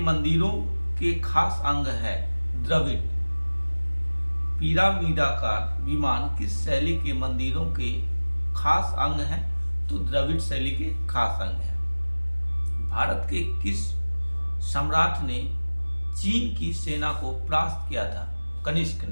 मंदिरों के खास अंग है? द्रविड़। पिरामिडाकार विमान किस शैली के मंदिरों के खास अंग है? तो द्रविड़ शैली के खास अंग है। भारत के किस सम्राट ने चीन की सेना को परास्त किया था? कनिष्क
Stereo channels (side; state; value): both; inverted; correlation -1.00